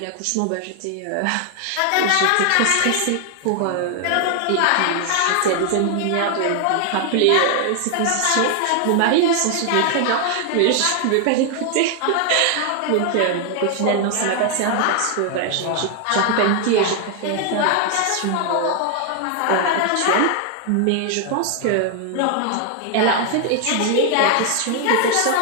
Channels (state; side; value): different; both; correlation 0.00